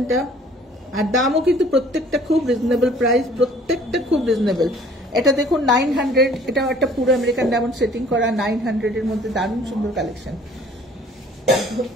আর দামও কিন্তু প্রত্যেকটা খুব রিজনেবল প্রাইস, প্রত্যেকটা খুব রিজনেবল। এটা দেখুন 900, এটাও একটা পুরো আমেরিকান ডায়মন্ড সেটিং করা, 900 এর মধ্যে দারুণ সুন্দর কালেকশন,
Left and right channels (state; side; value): normal; both; correlation 0.54